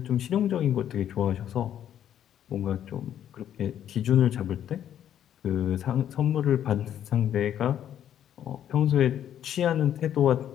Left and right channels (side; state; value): right; quieter; 10.3 dB